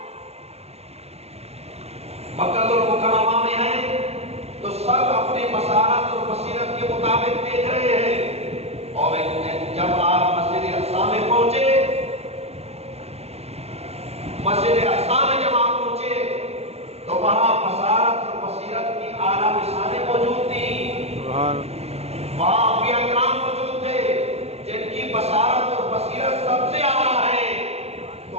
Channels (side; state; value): left; late; 0.30 ms